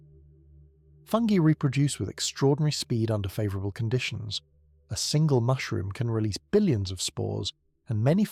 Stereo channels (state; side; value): identical; both; correlation 1.00